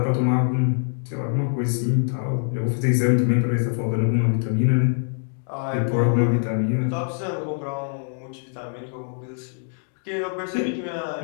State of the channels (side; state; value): right; silent; digital silence